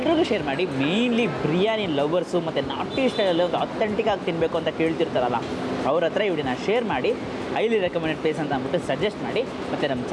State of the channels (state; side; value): identical; both; correlation 1.00